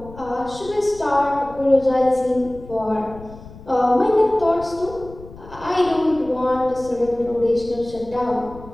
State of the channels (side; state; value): left; noise; rumble, 17 dB below the sound